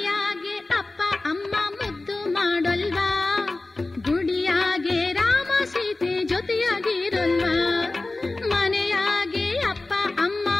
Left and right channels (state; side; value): quieter; right; 3.1 dB